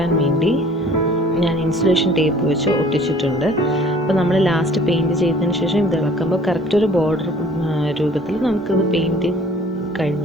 വേണ്ടി ഞാൻ ഇൻസുലേഷൻ ടേപ്പ് വെച്ച് ഒട്ടിച്ചിട്ടുണ്ട്. അപ്പോൾ നമ്മൾ ലാസ്റ്റ് പെയിൻറ്റ് ചെയ്തതിന് ശേഷം ഇത് ഇളക്കുമ്പോൾ കറക്റ്റ് ഒരു ബോർഡർ രൂപത്തിൽ നമുക്കിത് പെയിൻറ്റ്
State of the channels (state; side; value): normal; both; correlation 0.52